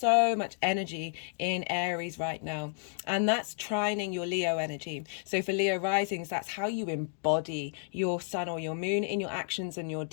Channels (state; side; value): silent; right; digital silence